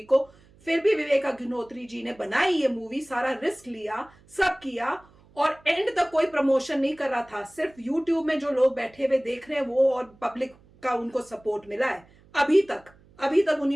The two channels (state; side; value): noise; right; hum, 28 dB below the sound